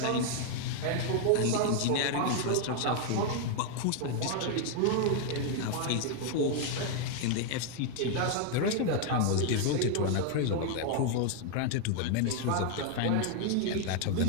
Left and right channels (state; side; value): different; both; correlation 0.00